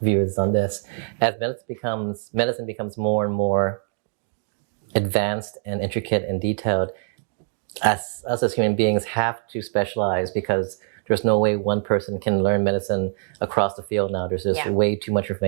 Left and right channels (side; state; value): left; silent; digital silence